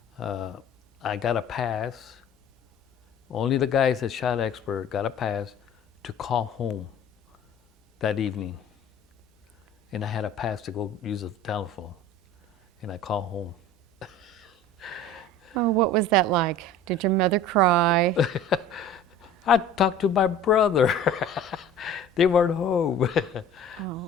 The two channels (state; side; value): normal; both; correlation 0.43